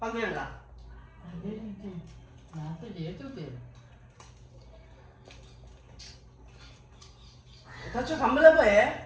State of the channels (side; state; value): both; identical; correlation 1.00